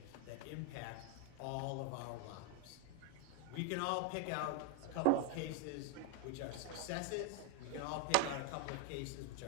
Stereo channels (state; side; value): different; both; correlation 0.01